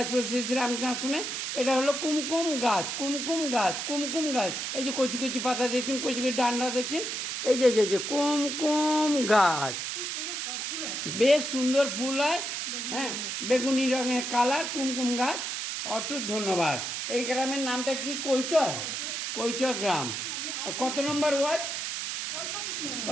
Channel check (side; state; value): right; noise; hiss, 3 dB below the sound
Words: শ্রী শ্রী রামকৃষ্ণ আশ্রমে। এটা হলো কুমকুম গাছ, কুমকুম গাছ, কুমকুম গাছ। এই যে কচি কচি পাতা দেখছেন, কচি কচি ডান্ডা দেখছেন, এই যে যে যে কুমকুম গাছ, বেশ সুন্দর ফুল হয়। হ্যাঁ, বেগুনি রঙের কালার, কুমকুম গাছ। অটুট ধন্যবাদ। এই গ্রামের নামটা কি? কৈচর, কৈচর গ্রাম। কত নম্বর ওয়ার্ড ও